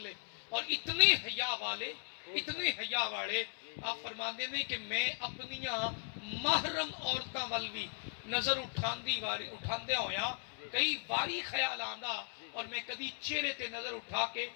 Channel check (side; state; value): right; silent; 53 dB below the other